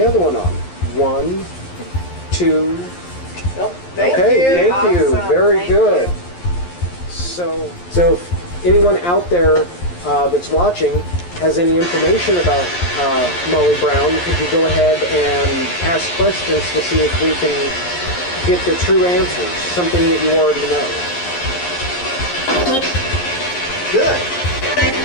other one on. 1, 2. Well, thank you. Thank you. Awesome. Very Thank good. you. So if anyone out there that's watching has any information about Molly Brown, could you go ahead and ask questions to see if we can get the true answers, something that you already know? Good.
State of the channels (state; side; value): late; right; 11 ms